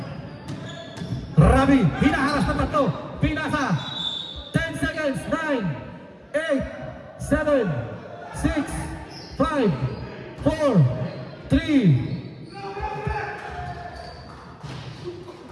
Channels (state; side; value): identical; both; correlation 1.00